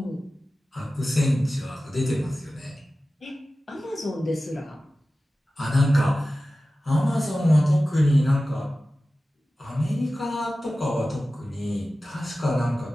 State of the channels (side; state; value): both; normal; correlation 0.95